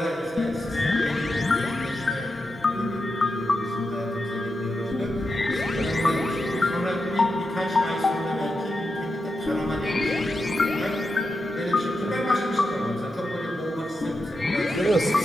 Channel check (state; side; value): normal; both; correlation 0.88